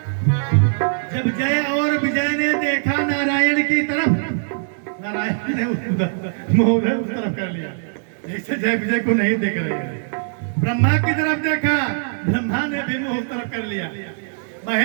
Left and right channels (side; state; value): left; silent; digital silence